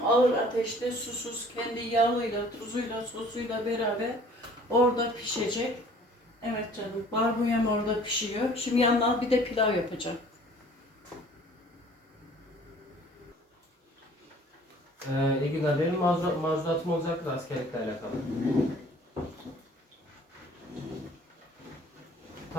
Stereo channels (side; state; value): both; normal; correlation 0.52